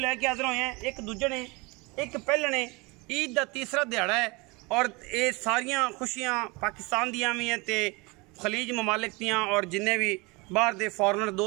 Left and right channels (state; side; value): quieter; left; 26.1 dB